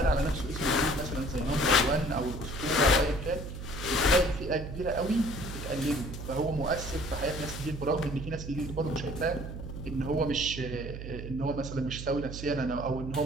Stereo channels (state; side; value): noise; right; hum, 8 dB below the sound